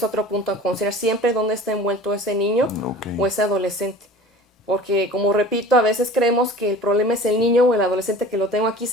otro punto a considerar siempre dónde está envuelto ese niño Ok. o ese adolescente. Porque, como repito, a veces creemos que el problema es el niño o el adolescente que lo tengo aquí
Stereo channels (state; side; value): normal; both; correlation 0.41